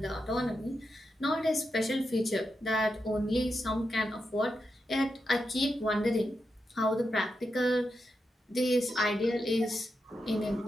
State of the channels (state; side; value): normal; both; correlation 0.86